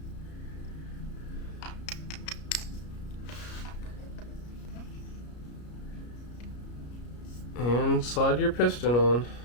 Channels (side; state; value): right; late; 33 ms